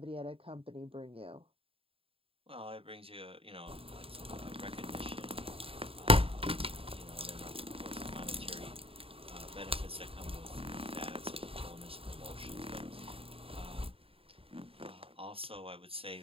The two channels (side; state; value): left; late; 0.27 ms